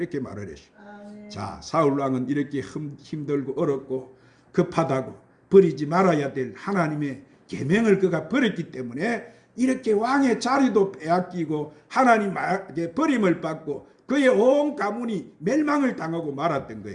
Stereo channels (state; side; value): identical; both; correlation 1.00